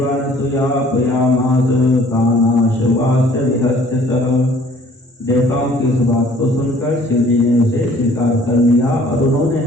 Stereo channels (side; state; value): both; normal; correlation 0.55